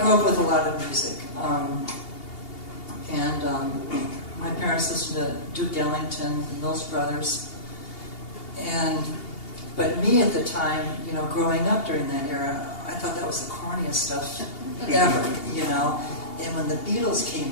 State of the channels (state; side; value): late; right; 2.8 ms